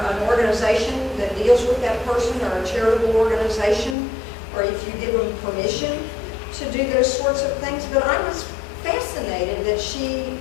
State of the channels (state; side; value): drops out; right; at 4.0 s